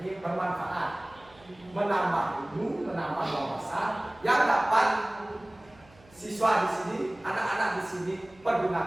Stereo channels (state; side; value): noise; right; hum, 27 dB below the sound